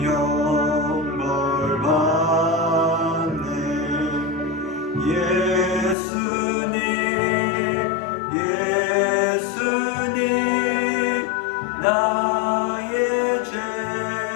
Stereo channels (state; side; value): drops out; right; at 6.0 s